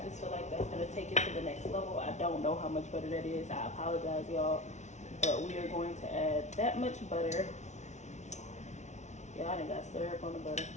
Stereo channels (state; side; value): late; right; 0.33 ms